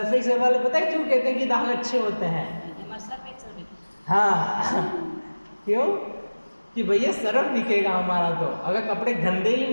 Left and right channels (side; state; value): both; inverted; correlation -1.00